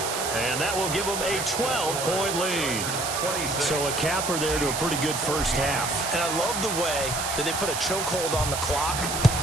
And that will give them a 12-point lead. So a capper there to a pretty good first half. And I love the way that they put a chokehold on the clock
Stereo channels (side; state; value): right; noise; hiss, 3 dB below the sound